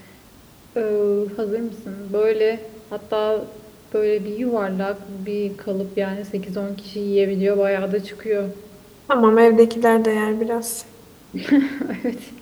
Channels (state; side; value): identical; both; correlation 1.00